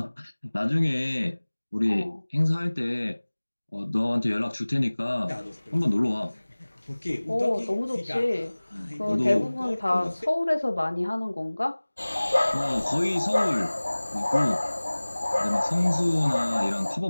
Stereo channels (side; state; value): both; inverted; correlation -1.00